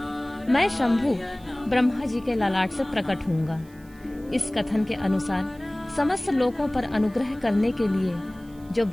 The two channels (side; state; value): right; noise; hiss, 28 dB below the sound